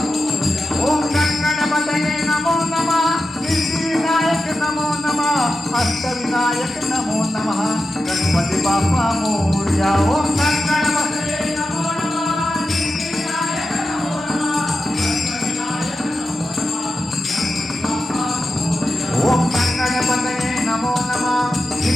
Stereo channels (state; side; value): normal; both; correlation 0.91